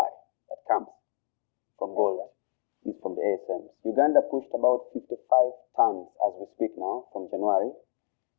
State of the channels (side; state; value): right; silent; digital silence